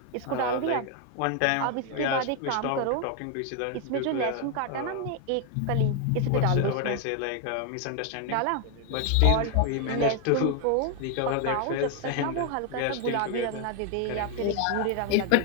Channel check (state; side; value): different; both; correlation 0.01